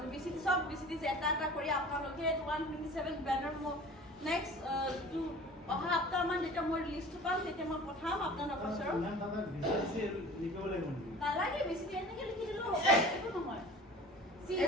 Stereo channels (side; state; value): both; normal; correlation 0.42